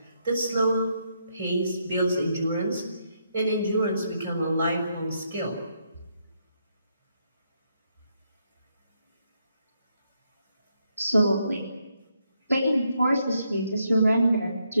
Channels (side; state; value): both; inverted; correlation -0.77